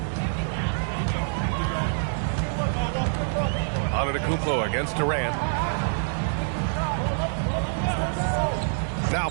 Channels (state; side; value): silent; left; 61 dB below the other